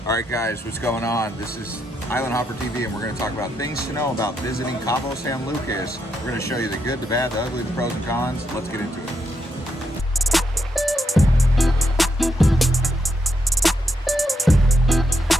All right, guys, what's going on? This is Island Hopper TV, and we're going to talk about things to know about visiting Cabo San Lucas. We're going to show you the good, the bad, the ugly, the pros and cons. Let's get into it.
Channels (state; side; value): normal; both; correlation 0.81